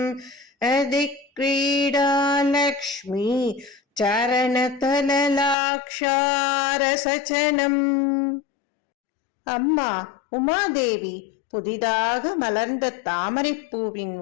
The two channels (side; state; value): right; drops out; at 5.6 s